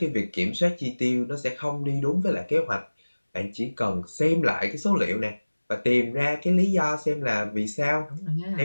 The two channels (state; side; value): inverted; both; correlation -1.00